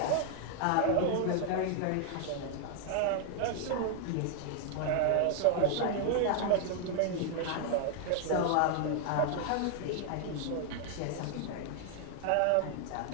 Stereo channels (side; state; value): both; different; correlation 0.00